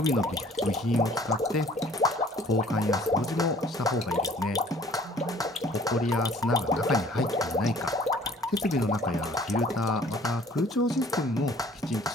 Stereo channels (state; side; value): normal; both; correlation 0.54